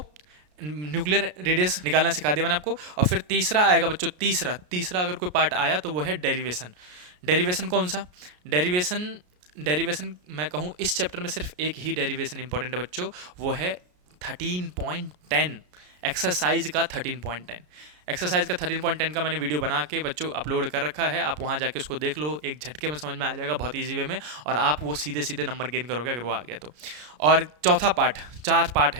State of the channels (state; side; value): late; left; 33 ms